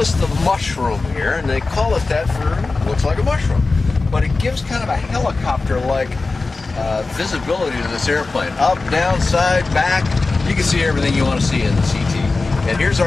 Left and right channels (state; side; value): quieter; right; 3.7 dB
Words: the mushroom here, and they call it that for looks like a mushroom. But it gives kind of a helicopter-like visibility to this airplane. Up, down, side, back. You can see everything you want to see in the CT. And here's